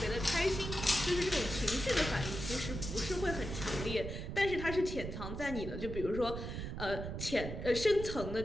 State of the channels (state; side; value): noise; right; rumble, 6 dB below the sound